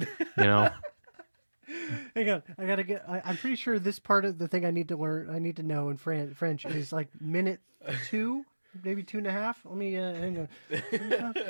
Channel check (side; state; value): both; inverted; correlation -1.00